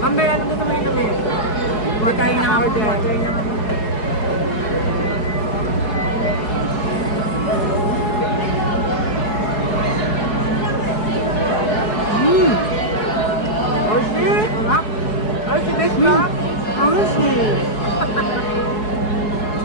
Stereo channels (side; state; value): right; late; 4.7 ms